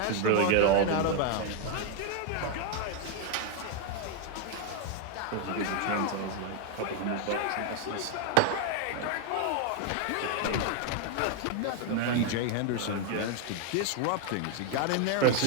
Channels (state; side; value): different; both; correlation 0.00